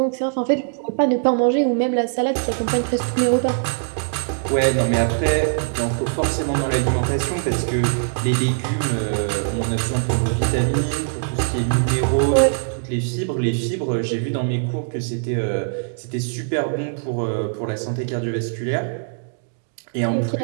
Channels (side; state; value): left; silent; digital silence